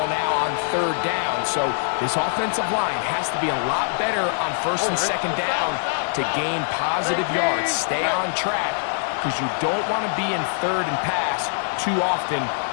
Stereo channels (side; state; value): right; silent; 63 dB below the other